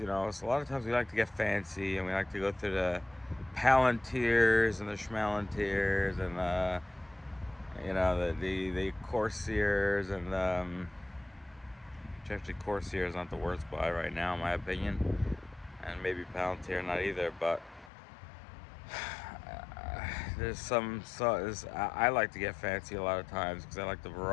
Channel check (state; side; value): drops out; right; at 17.9 s